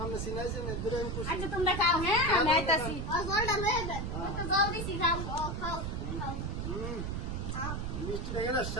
আপনি চিনাইছেন দূরে আমি খুশি। আচ্ছা তোমরা খাও, হ্যাঁ আমি আইতাছি। মিষ্টিটা গেল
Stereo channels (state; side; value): noise; right; rumble, 3 dB below the sound